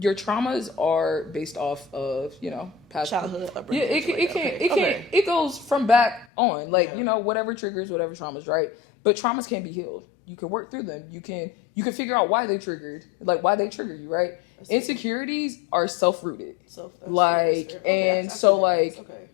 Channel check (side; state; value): right; drops out; at 6.2 s